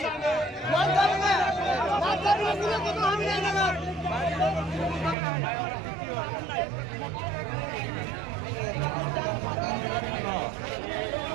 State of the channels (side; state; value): left; drops out; at 5.2 s